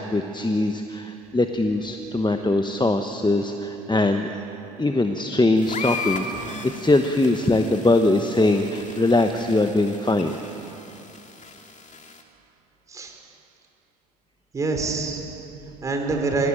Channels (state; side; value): normal; both; correlation 0.74